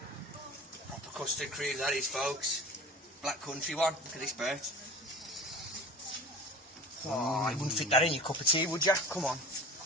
Proper custard cream, that is, folks. Black Country one. Look at this burt. Oh, you wouldn't fit that in your cup of tea, would you? Come on.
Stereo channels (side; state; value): both; normal; correlation 0.37